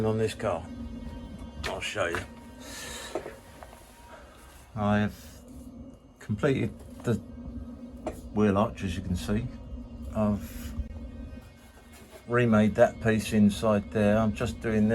on this car? I'll show you. I have completed the wheel arch, as you can see. I've remade that piece inside there. I'm just doing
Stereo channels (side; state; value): both; identical; correlation 1.00